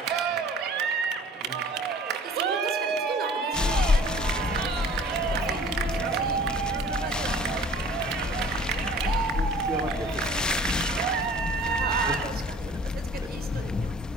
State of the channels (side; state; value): both; normal; correlation 0.49